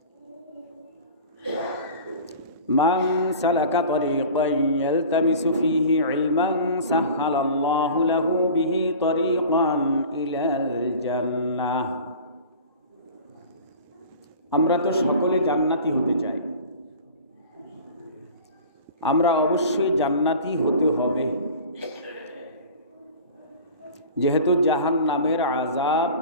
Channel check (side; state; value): both; inverted; correlation -0.39